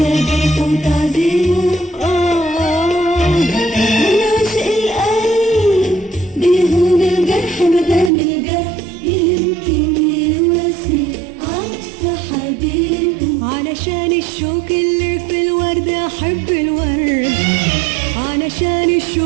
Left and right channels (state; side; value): drops out; left; at 8.1 s